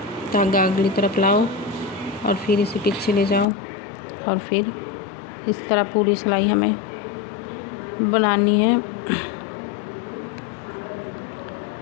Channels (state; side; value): drops out; right; at 3.5 s